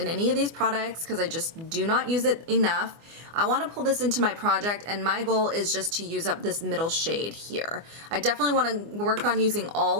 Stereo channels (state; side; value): late; left; 24 ms